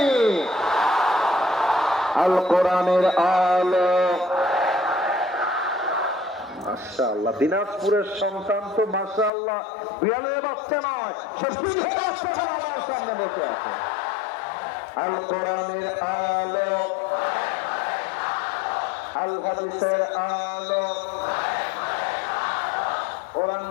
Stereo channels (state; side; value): drops out; right; at 9.3 s